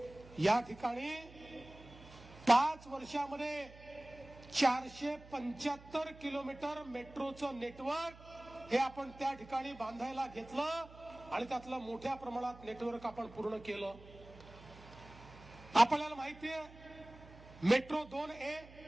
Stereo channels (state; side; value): noise; right; hum, 19 dB below the sound